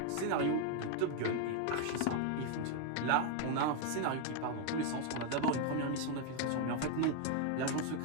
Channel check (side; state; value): both; different; correlation 0.01